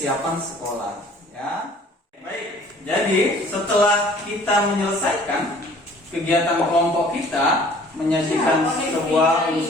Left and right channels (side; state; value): both; normal; correlation 0.52